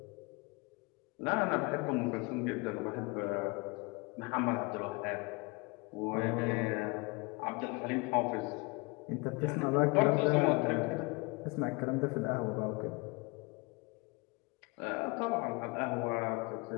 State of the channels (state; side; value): quieter; right; 27.8 dB